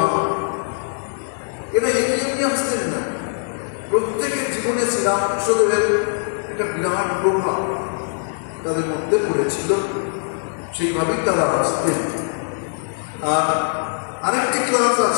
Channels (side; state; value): right; silent; 65 dB below the other